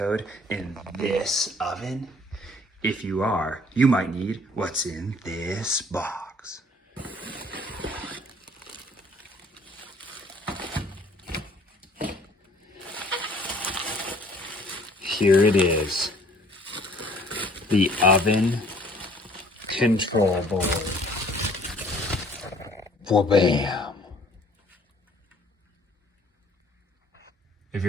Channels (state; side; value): normal; both; correlation 0.56